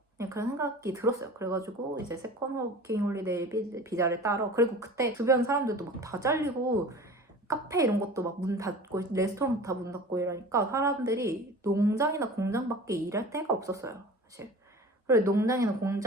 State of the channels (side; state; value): both; normal; correlation 0.39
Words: 그냥 그런 생각이 들었어요. 그래가지고 이제 세컨 워킹 홀리데이 비자를 따러 그리고 그때 주변 사람들도 막 다 잘리고 카페 이런 것도 막 문 닫고 레스토랑 다 문 닫고 이러니까 사람들이 농장이나 공장밖에 일할 데가 없었어요, 사실. 그리고 농장이나